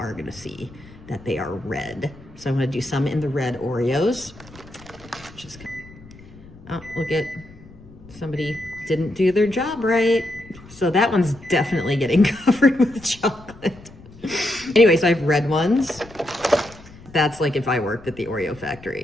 gonna see that they are red. So I'm gonna do some in the red Oreos. Just, oh, look at, somebody didn't do their job right. So that one's definitely getting covered with chocolate. Anyway, so I have red ones. That's like if I worked at the Oreo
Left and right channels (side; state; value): left; noise; rumble, 21 dB below the sound